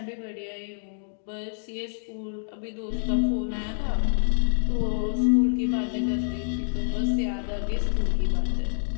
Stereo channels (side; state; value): right; silent; digital silence